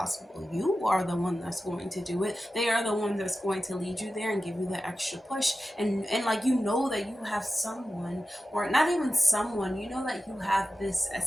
You are the one that's going to do it. They are the one that's going to lead you there and give you the extra push. And like, you know that you have someone, or not even someone, you know that you have this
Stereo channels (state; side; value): normal; both; correlation 0.93